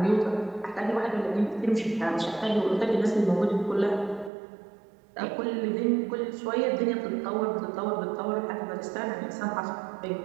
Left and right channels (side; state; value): left; drops out; at 4.3 s